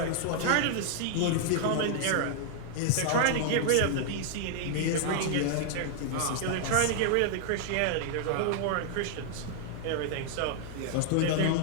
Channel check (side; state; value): both; different; correlation 0.00